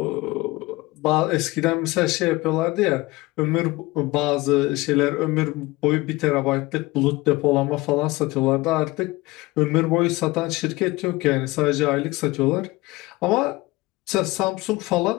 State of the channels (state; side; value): quieter; right; 21.0 dB